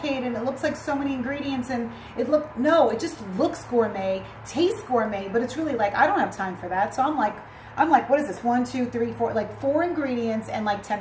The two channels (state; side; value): identical; both; correlation 1.00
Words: and it looks like so many ingredients and no, it just looks gourmet, tastes gourmet, but it's really like, I don't have time for that. So I'm like, what is this? 1, 2, 3, 4, like 4 ingredients and like